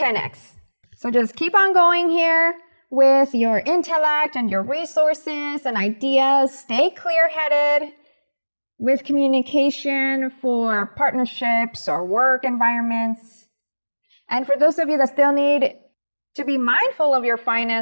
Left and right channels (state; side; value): inverted; both; correlation -1.00